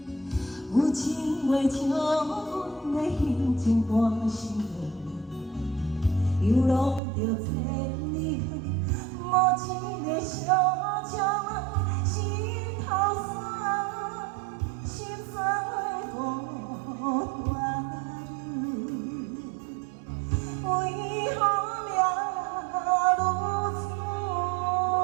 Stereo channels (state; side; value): drops out; left; at 7.0 s